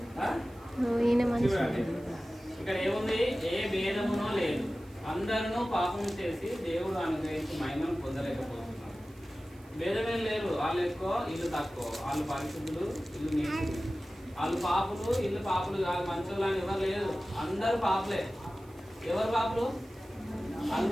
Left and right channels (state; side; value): noise; right; hiss, 28 dB below the sound